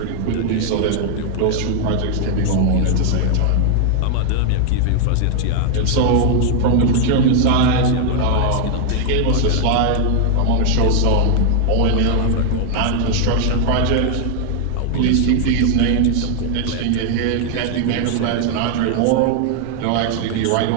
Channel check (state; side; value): different; both; correlation 0.00